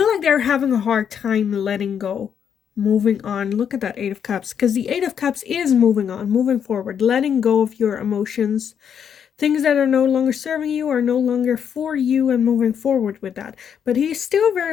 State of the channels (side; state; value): right; quieter; 8.0 dB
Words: like they're having a hard time letting go, moving on. Look at that 8 of Cups, because the 8 of Cups is moving on, moving forward, letting go of your emotions. Things that are no longer serving you are no longer for you, and moving forward with that. But he's still